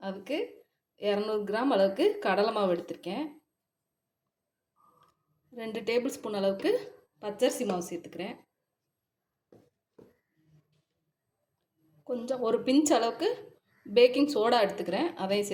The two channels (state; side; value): identical; both; correlation 1.00